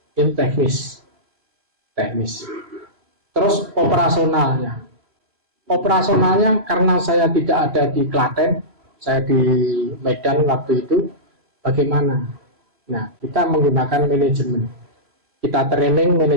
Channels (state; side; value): late; left; 3.1 ms